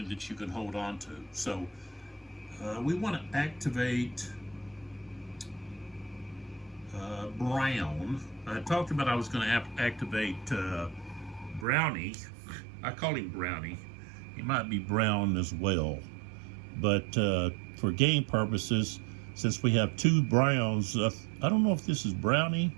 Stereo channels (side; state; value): left; drops out; at 11.7 s